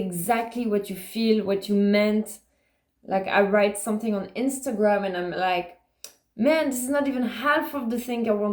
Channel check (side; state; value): both; identical; correlation 1.00